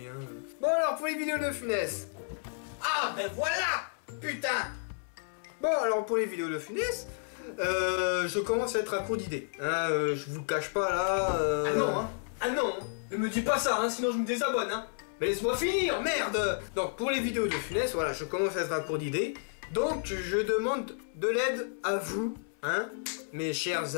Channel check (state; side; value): silent; right; 57 dB below the other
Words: Hein. Bon alors pour les vidéos de Funès. Ah ben voilà! Putain! Bon alors pour les vidéos de Funès, je commence à être à court d'idées. Hein, je vous le cache pas là. Ah non hein! Ah non! Ne me dis pas ça, hein, sinon je me désabonne. Hein. Mais laisse-moi finir, merde! Donc pour les vidéos de Funès, voilà, je commence à être à court d'idées. Donc je demande de l'aide à vous, hein, mes chers